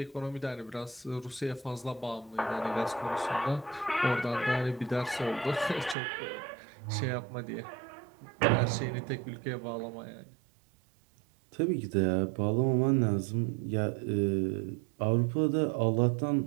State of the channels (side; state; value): left; drops out; at 6.0 s